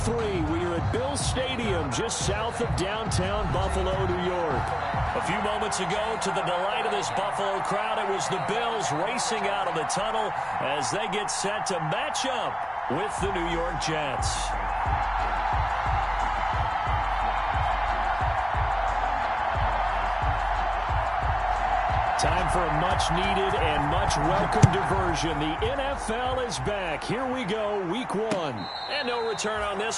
we are at Bills Stadium just south of downtown Buffalo, New York. A few moments ago, to the delight of this Buffalo crowd, it was the Bills racing out of the tunnel as they get set to match up with the New York Jets. Time for a much-needed and much-welcome diversion. The NFL is back. Here we go, Week 1. And no return on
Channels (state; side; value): identical; both; correlation 1.00